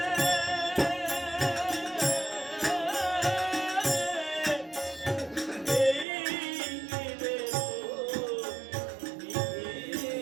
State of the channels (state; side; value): drops out; left; at 6.1 s